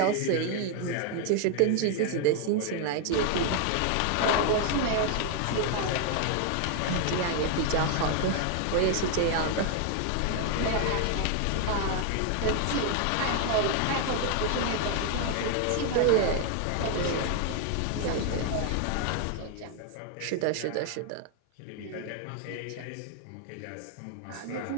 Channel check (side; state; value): both; different; correlation 0.00